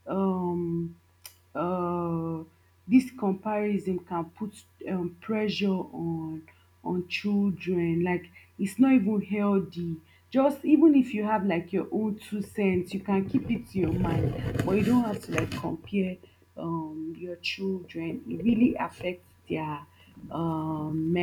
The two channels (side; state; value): both; identical; correlation 1.00